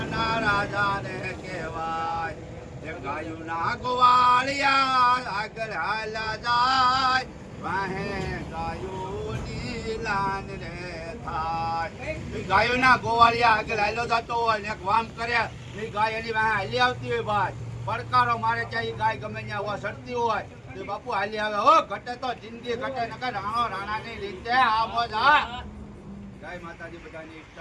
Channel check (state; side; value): identical; both; correlation 1.00